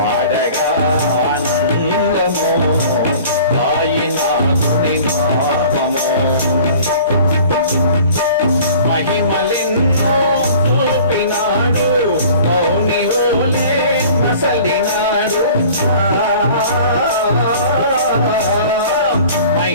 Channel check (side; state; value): both; inverted; correlation -0.46